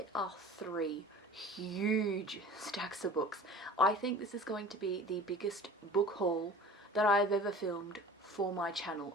are 3 huge stacks of books. I think this is going to be the biggest book haul that I've ever filmed for my channel.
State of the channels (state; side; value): normal; both; correlation 0.42